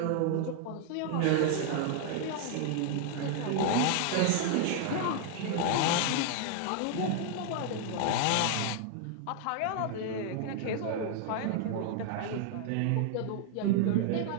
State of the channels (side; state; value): both; different; correlation 0.00